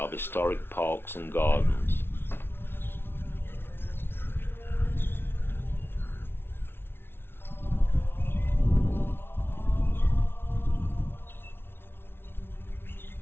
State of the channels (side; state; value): right; late; 0.11 ms